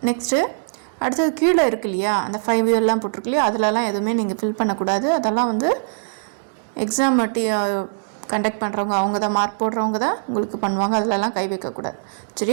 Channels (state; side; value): silent; left; digital silence